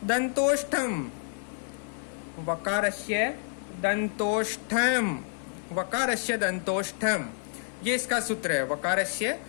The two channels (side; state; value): right; silent; 59 dB below the other